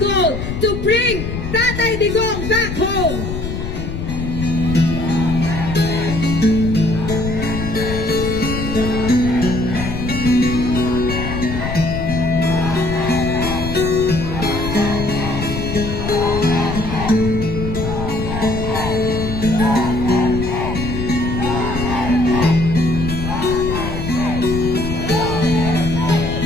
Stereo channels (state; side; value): noise; left; rumble, 5 dB below the sound